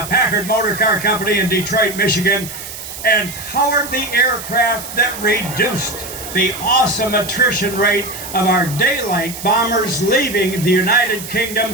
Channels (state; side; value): noise; right; hiss, 11 dB below the sound